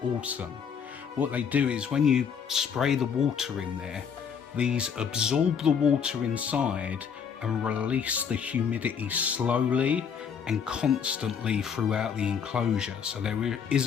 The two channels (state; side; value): quieter; right; 7.1 dB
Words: awesome. What they do is when you spray the water in there, these absorb the water inside and release the humidity slowly and constantly throughout the enclosure. So there